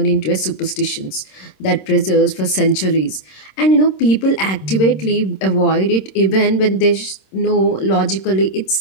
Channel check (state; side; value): late; right; 26 ms